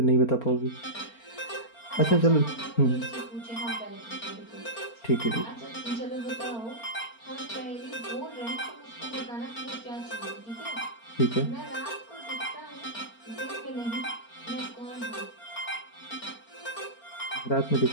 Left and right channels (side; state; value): right; late; 4.4 ms